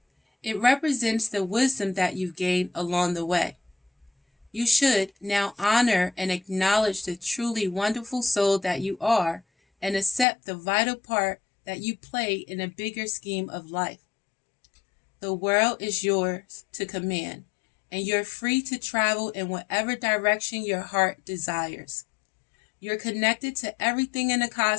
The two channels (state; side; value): drops out; right; at 10.2 s